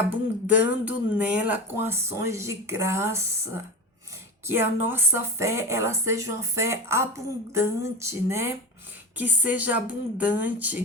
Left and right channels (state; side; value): normal; both; correlation 0.23